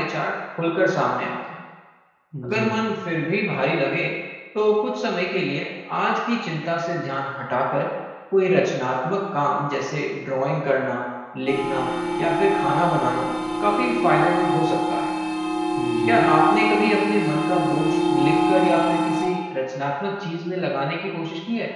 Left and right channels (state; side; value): identical; both; correlation 1.00